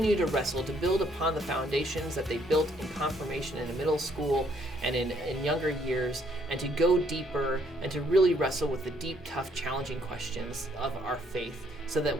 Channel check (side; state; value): both; normal; correlation 0.67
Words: to wrestle, to build upon the foundations that they built in confirmation in middle school and in younger years, and to go deeper and to really wrestle with the deep, tough, challenging questions of our faith, so that